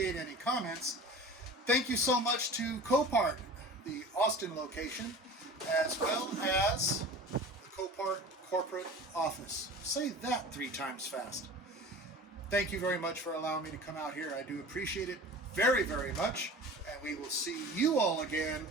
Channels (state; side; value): normal; both; correlation 0.38